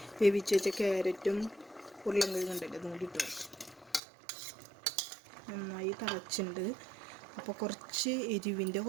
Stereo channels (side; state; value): left; drops out; at 4.0 s